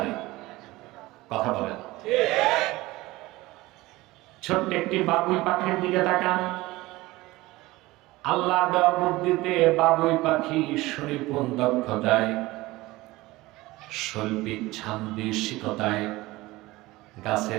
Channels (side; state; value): left; quieter; 19.6 dB